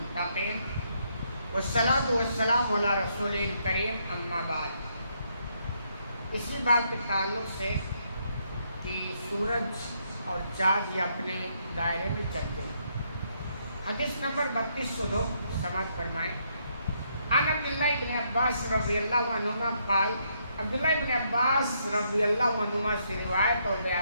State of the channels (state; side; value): inverted; both; correlation -0.74